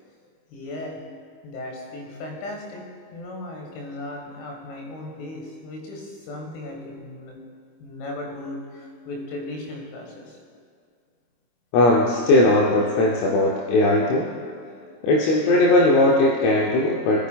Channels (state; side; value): late; right; 25 ms